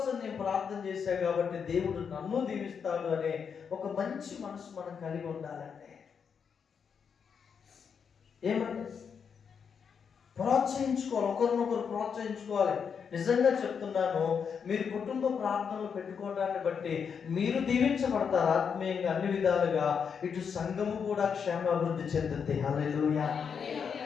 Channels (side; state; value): right; quieter; 6.7 dB